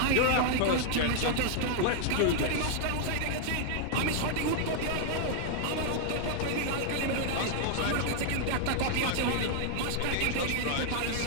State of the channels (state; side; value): different; both; correlation 0.00